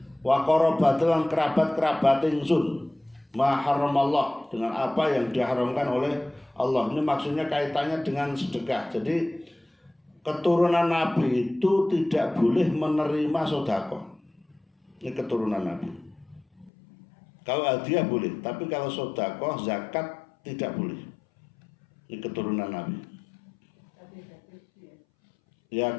wa qarabati lan kerabat-kerabat ingsun ma haramallah dengan apa yang diharamkan oleh Allah. Ini maksudnya kaitannya dengan sedekah. Jadi keturunan Nabi itu tidak boleh menerima sedekah. Ini keturunan Nabi. Kalau hadiah boleh, tapi kalau sedekah zakat tidak boleh. Ini keturunan Nabi. Ya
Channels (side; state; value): right; drops out; at 16.7 s